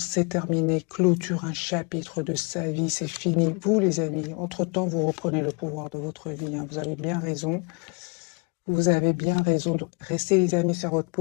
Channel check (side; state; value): right; quieter; 33.4 dB